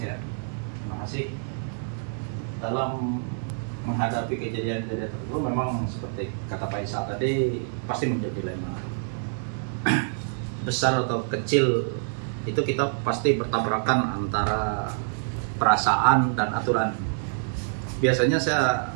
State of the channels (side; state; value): left; silent; 59 dB below the other